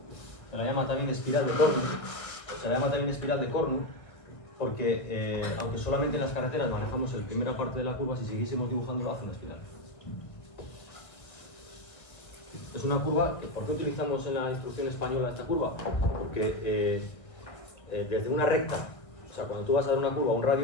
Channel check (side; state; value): right; late; 1.4 ms